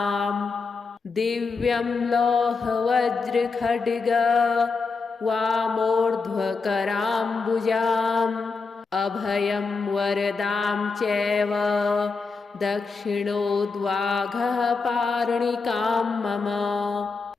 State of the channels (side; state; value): right; quieter; 4.4 dB